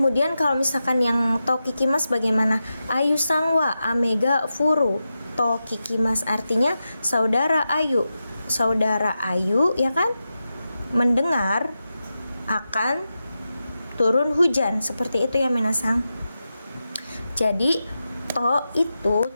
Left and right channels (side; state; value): both; inverted; correlation -0.91